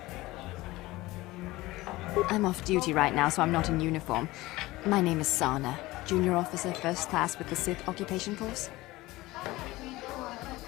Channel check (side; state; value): right; quieter; 19.0 dB